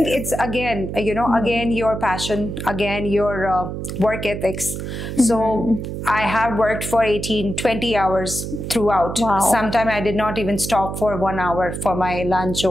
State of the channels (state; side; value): noise; right; hum, 6 dB below the sound